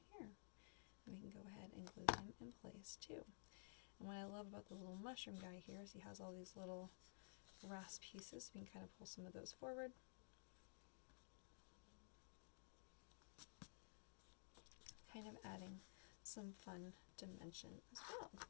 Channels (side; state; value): right; silent; digital silence